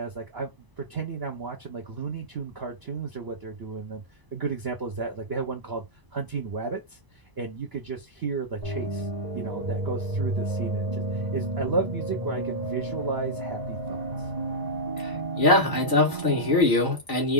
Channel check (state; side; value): late; left; 1.0 ms